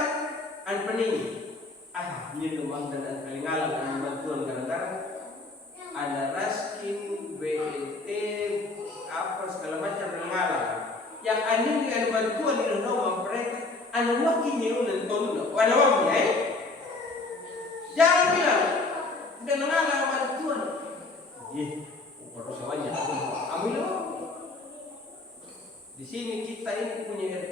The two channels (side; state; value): right; quieter; 3.4 dB